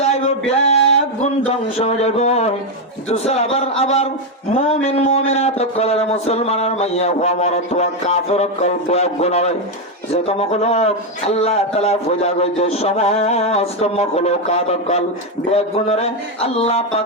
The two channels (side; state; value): both; normal; correlation 0.05